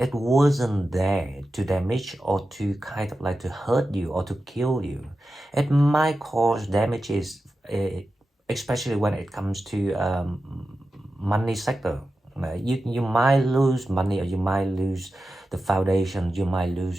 wasn't there to damage or to kind of like to hurt you or to kill you. It might cause damages, especially when it comes to money sector. You might lose money, or you might lose the foundation, you might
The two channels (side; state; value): both; normal; correlation 0.92